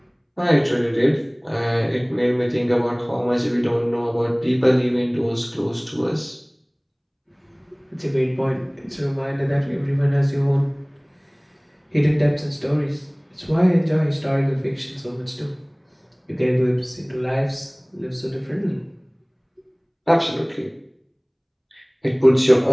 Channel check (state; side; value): identical; both; correlation 1.00